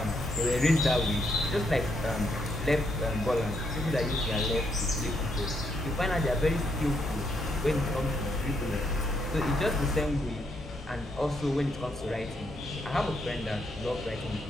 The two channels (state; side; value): normal; both; correlation 0.76